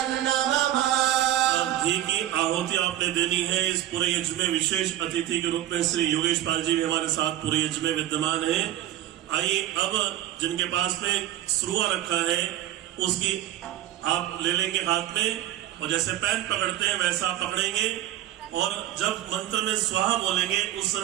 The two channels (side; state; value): left; quieter; 13.0 dB